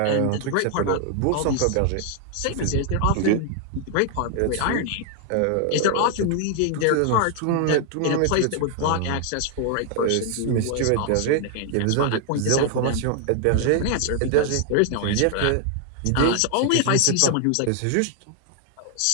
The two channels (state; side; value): different; both; correlation 0.00